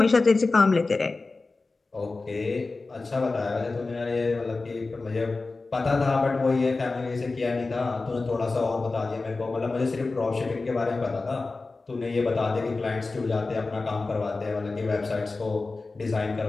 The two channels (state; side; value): quieter; right; 3.6 dB